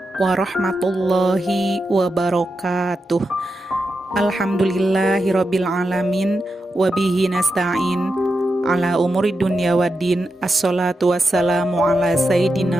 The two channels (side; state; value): both; normal; correlation 0.88